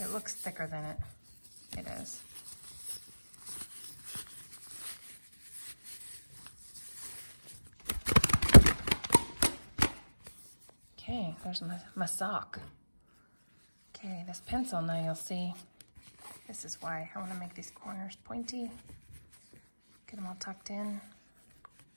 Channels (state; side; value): inverted; both; correlation -1.00